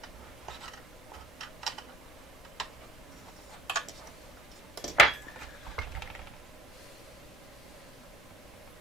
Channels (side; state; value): both; normal; correlation 0.51